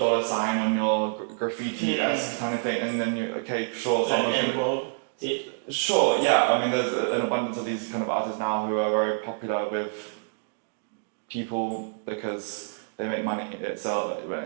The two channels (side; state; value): left; silent; digital silence